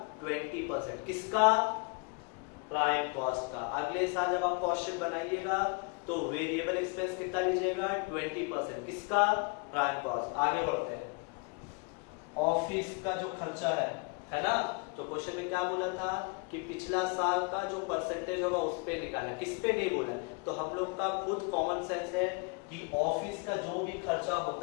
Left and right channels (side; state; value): right; quieter; 32.3 dB